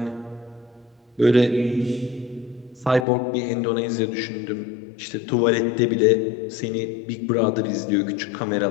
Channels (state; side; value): drops out; right; at 3.1 s